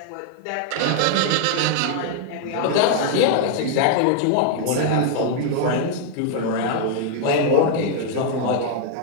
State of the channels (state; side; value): different; both; correlation 0.00